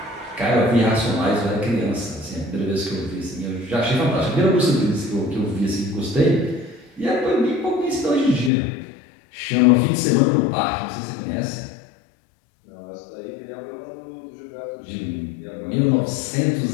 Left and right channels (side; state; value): right; drops out; at 8.5 s